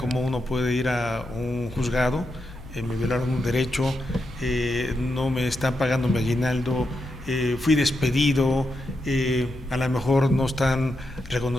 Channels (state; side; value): noise; left; hum, 16 dB below the sound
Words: uno puede ir a un juzgado, me violaron un derecho, no me están pagando mi aguinaldo, fui despedido, a lo mejor no están